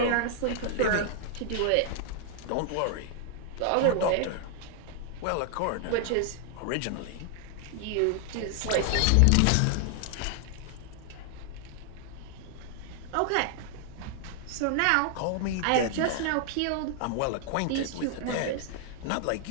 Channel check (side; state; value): both; different; correlation 0.00